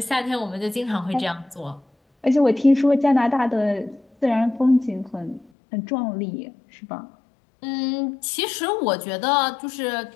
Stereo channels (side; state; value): right; drops out; at 5.5 s